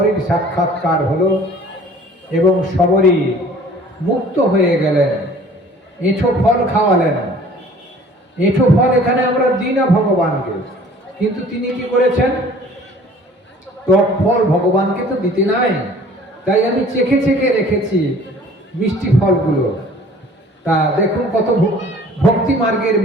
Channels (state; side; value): normal; both; correlation 0.51